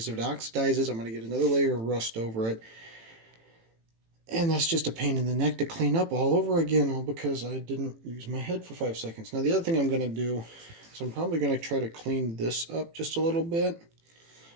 if it oxidizes, I'm going to get another layer of rust over it. And that's just a pain in the neck to clean up all over again, all because I didn't use my head for 5 seconds. Now the other thing I'm going to do is I'm probably going to try to clean this up just a little bit.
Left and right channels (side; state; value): left; late; 18 ms